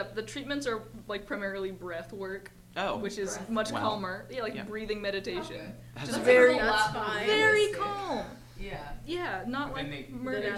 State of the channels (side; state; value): both; identical; correlation 1.00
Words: The treatments are like primarily breath work, Oh, which is Breath. much Wow. calmer. Yeah, like Yeah. breathing meditation. Okay. That's Just That very, sounds a lot more fine. very realistic. calm. Yeah. Yeah, not But like then they- murder. Then at